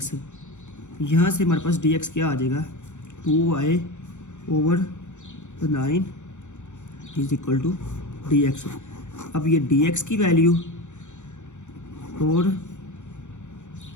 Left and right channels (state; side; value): late; right; 0.85 ms